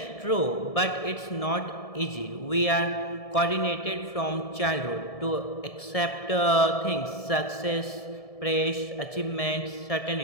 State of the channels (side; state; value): right; late; 1.7 ms